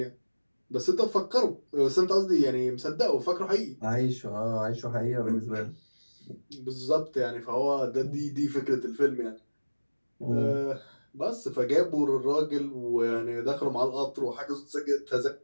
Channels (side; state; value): both; inverted; correlation -1.00